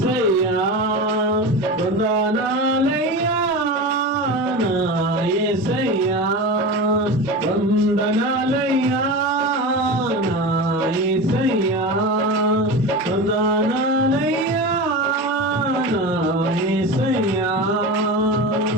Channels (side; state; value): both; normal; correlation 0.26